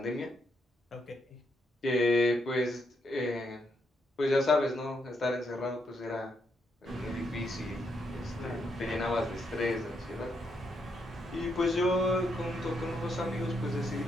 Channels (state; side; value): normal; both; correlation 0.78